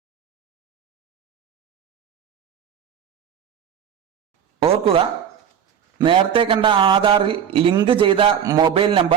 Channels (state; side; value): quieter; left; 8.6 dB